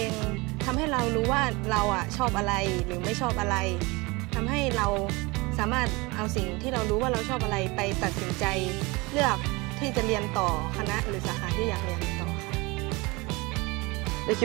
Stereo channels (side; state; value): left; quieter; 24.7 dB